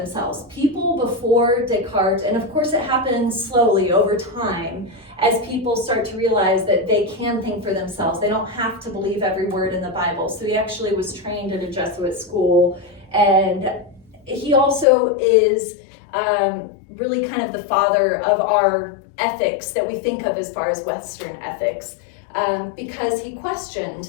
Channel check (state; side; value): drops out; right; at 14.9 s